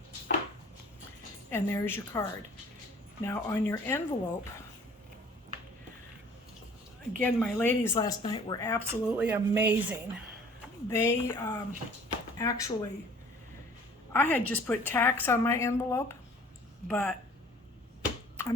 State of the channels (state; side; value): normal; both; correlation 0.51